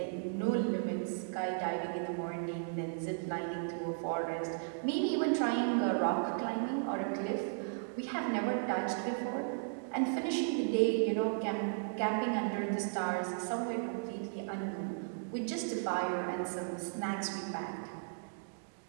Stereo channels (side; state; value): left; silent; digital silence